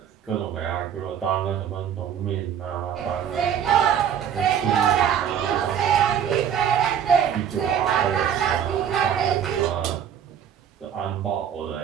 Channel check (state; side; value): quieter; left; 8.8 dB